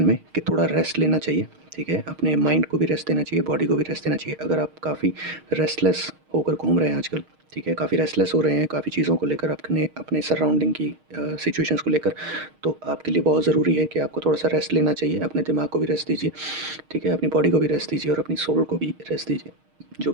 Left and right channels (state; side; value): late; left; 6.4 ms